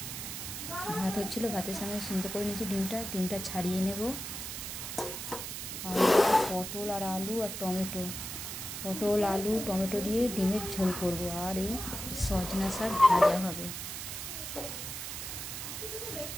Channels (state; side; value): noise; right; hiss, 6 dB below the sound